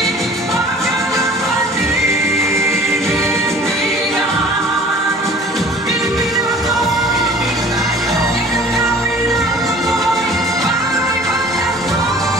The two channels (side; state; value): both; normal; correlation 0.47